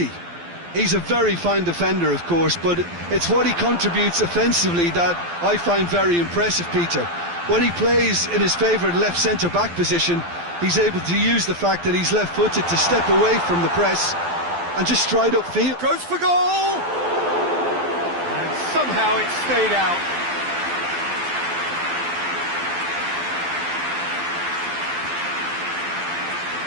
He's a very fine defender, of course, but it's what he contributes offensively that I find very impressive, Peter. When he plays in his favourite left centre-back position, he's able to use the fact that he's left-footed to step away from the press and just stride upfield. Goes for goal! And somehow it stayed out.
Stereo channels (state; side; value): late; left; 12 ms